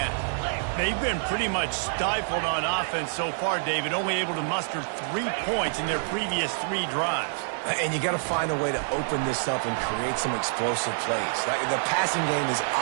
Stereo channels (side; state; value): left; silent; 60 dB below the other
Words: They've been pretty much stifled on offense so far, David, only able to muster 3 points in their previous 3 drives. And you got to find a way to open this up and create some explosive plays. The passing game is